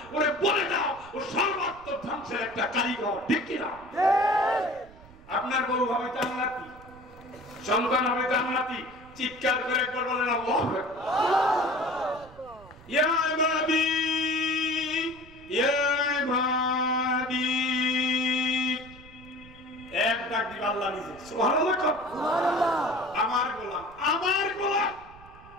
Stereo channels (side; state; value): right; noise; rumble, 22 dB below the sound